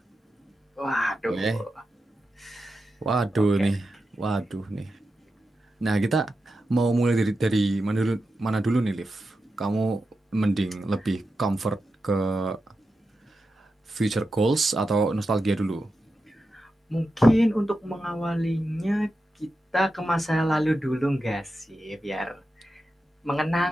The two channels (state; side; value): normal; both; correlation 0.90